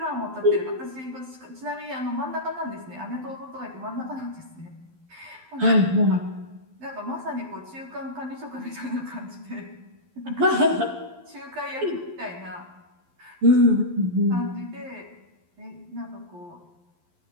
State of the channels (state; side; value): late; left; 12 ms